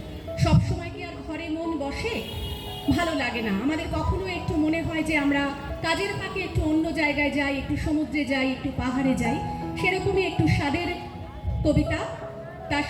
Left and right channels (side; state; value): both; identical; correlation 1.00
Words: সবসময় কি আর ঘরে মন বসে? ভালো লাগে না আমাদের, কখনো একটু মনে হয় যে আমরা কাজের ফাঁকে একটু অন্য জায়গায় যাই, একটু সমুদ্রে যাই, একটু পাহাড়ে যাই। সেরকমই একটু স্বাদের কবিতা, তার